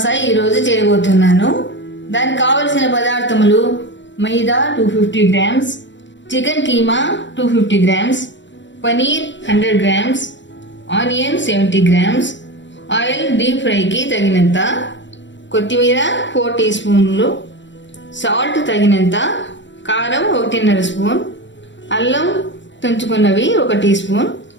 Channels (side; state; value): right; late; 0.53 ms